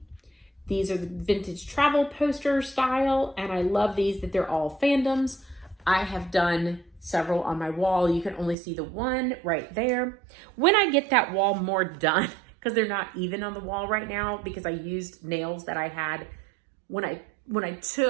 These are the vintage travel poster style, and I love these that they're all fandoms. I have done several on my wall. You can only see the one right there. When I get that wall more done, because they're not even on the wall right now because I used nails that I had when I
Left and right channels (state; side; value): drops out; left; at 8.6 s